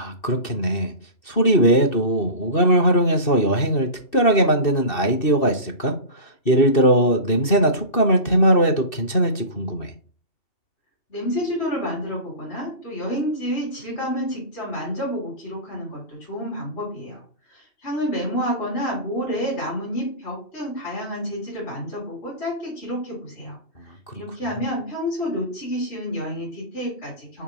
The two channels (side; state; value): right; late; 2.6 ms